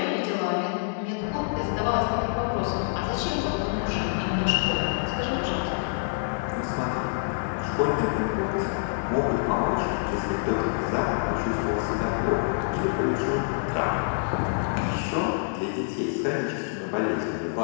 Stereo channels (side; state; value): right; silent; 60 dB below the other